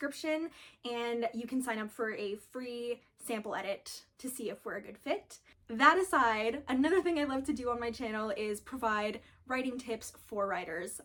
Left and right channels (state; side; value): identical; both; correlation 1.00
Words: and you can sign up for a free sample edit to see if we're a good fit. That aside, another thing I love to do on my channel is provide writing tips for writers.